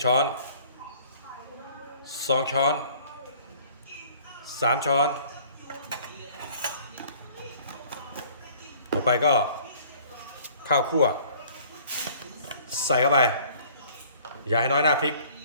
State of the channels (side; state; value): both; inverted; correlation -0.54